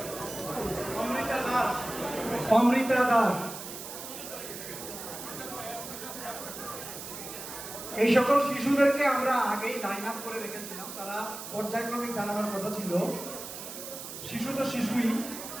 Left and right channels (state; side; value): noise; right; hiss, 10 dB below the sound